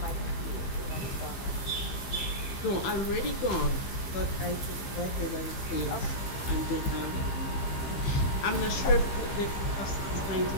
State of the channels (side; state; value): right; late; 15 ms